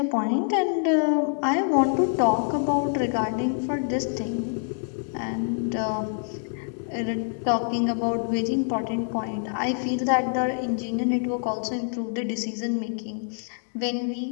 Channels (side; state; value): right; silent; 60 dB below the other